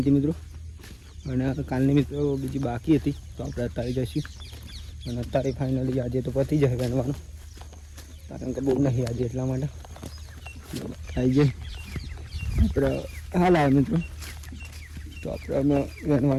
હતી મિત્રો અને કાલની મિત્રો બીજી બાકી હતી તો આપણે અત્યારે જઈશું અને અત્યારે ફાઇનલી આજે તો પતી જાય બનવાનું કારણ કે બહુ નહીં આજે એટલા માટે આવી જાય આપણે હાલ આવે મિત્રો તો આપણે અમે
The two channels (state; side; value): identical; both; correlation 1.00